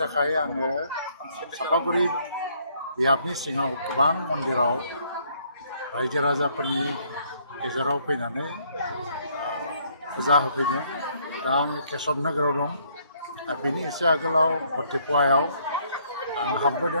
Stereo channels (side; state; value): both; inverted; correlation -0.66